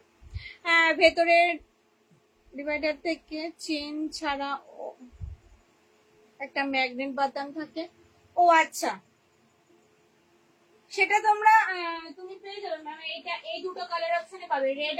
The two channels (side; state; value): both; identical; correlation 1.00